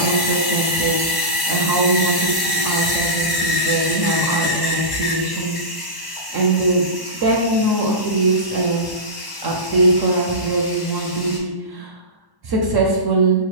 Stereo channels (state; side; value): late; left; 1.1 ms